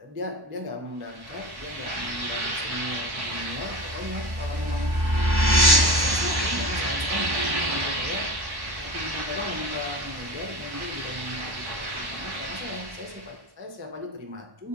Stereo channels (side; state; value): left; late; 1.1 ms